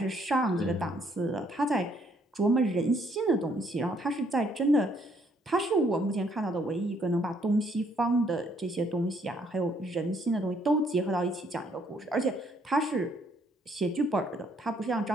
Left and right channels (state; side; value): normal; both; correlation 0.68